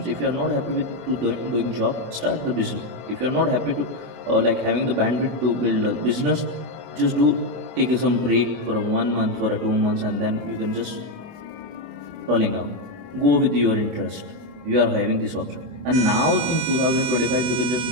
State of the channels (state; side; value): late; left; 24 ms